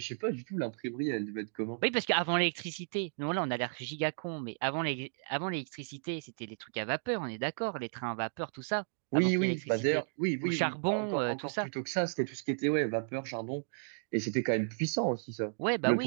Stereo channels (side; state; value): left; silent; digital silence